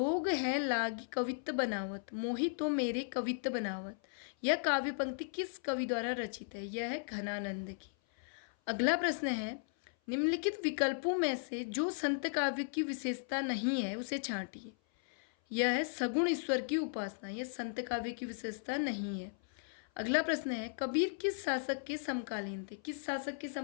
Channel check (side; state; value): right; silent; 54 dB below the other